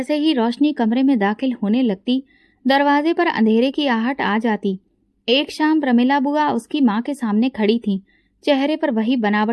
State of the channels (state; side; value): identical; both; correlation 1.00